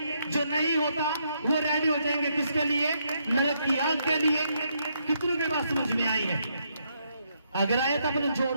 जो नहीं होता वो रेडी हो जाएंगे किसके लिए, नरक की आग के लिए। कितनों के बात समझ में आई है? अगर आए तो अपने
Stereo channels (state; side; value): inverted; both; correlation -0.76